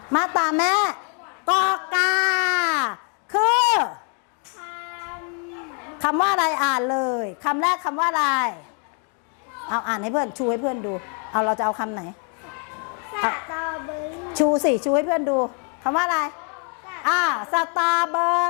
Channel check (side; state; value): right; quieter; 39.8 dB